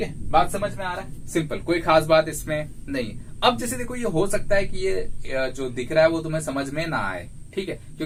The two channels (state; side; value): identical; both; correlation 1.00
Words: है, बात समझ में आ रहा है? सिंपल, कोई खास बात इसमें नहीं। अब जैसे देखो, ये हो सकता है कि ये जो दिख रहा है वो तुम्हें समझ में ना आए, ठीक है,